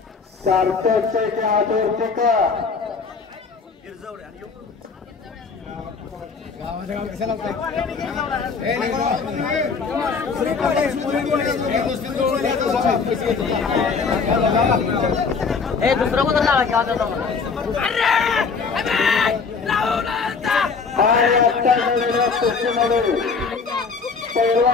सार्थक शेटे आदरपुत्र दुसरं कोण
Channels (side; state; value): right; quieter; 5.1 dB